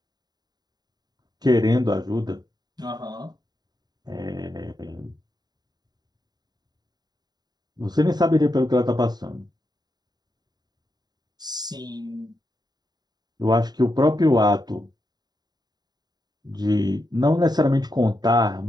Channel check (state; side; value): late; left; 0.20 ms